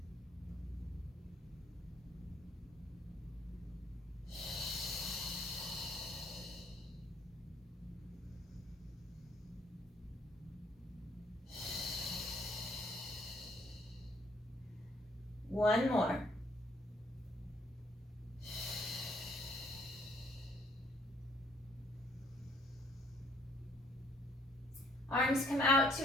One more. Arms come out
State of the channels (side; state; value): both; normal; correlation 0.65